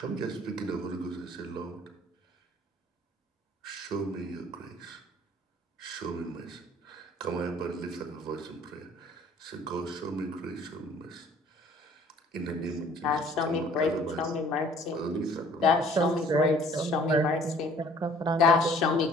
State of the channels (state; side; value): normal; both; correlation 0.54